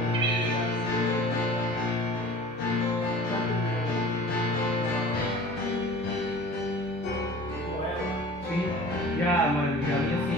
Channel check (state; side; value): normal; both; correlation 0.42